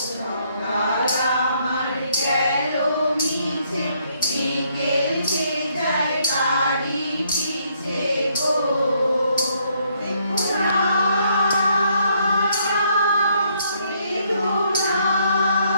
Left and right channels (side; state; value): both; inverted; correlation -0.70